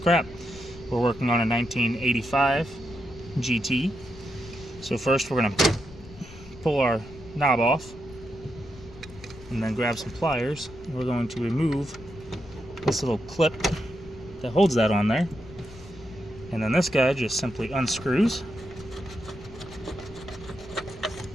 We're working on a 1985 GT. So first we're going to pull our knob off and then grab some pliers. We're going to remove this little clip that holds that on there. And then this guy just simply unscrews.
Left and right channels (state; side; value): noise; left; rumble, 18 dB below the sound